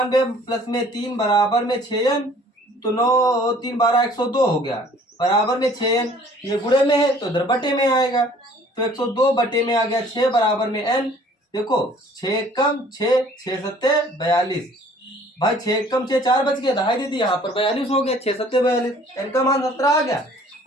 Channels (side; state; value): both; normal; correlation 0.54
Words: प्लस में 3 बराबर में 6n, तो 9 3 12 102 हो गया, बराबर में 6n। ये गुणे में है तो इधर बटे में आएगा, तो 102 बटे में आ गया 6 बराबर में n। देखो 6 कम 6, 6 सत्ते 42। भाई 6 कम 6 4 बच गया, दहाई दीदी यहाँ पर 42 हो गया। 6 सत्ते 42, n का मान 17 आ गया।